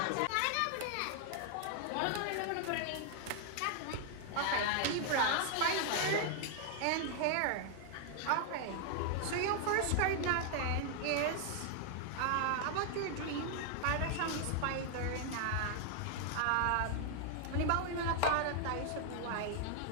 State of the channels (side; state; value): both; different; correlation 0.00